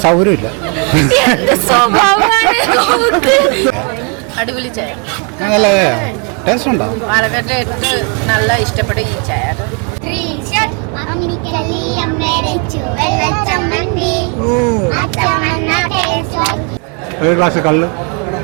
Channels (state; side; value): quieter; left; 36.4 dB